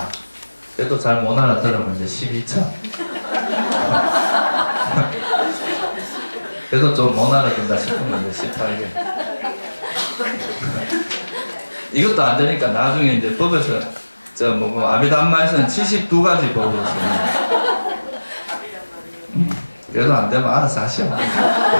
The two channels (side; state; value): both; inverted; correlation -1.00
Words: 그래도 잘 못 알아들으면 이제 12처. 그래도 좀 못 알아듣는다 싶으면 이제 18개. 이것도 안 되니까 나중에 이제 법에서 아비담마에서는 72가지 법으로 씁니다. 그래도 안 되면 알아서 하시오.